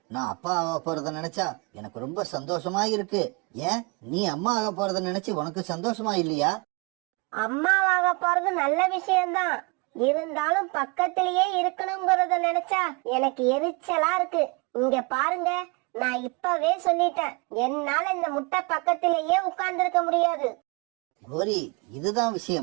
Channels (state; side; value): quieter; left; 29.5 dB